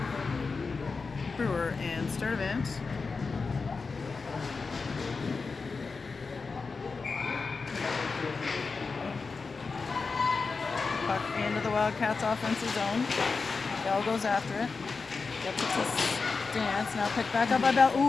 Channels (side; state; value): right; quieter; 4.5 dB